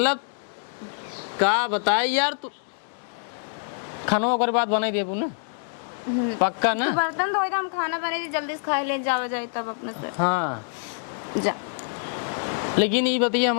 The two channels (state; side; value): silent; right; digital silence